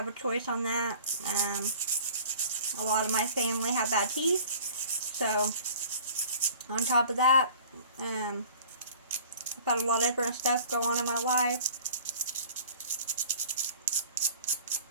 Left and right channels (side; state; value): both; inverted; correlation -0.47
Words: a choice on that. A lot of my family have bad teeth, so on top of that, I've had a lot of different stuff go on in my life.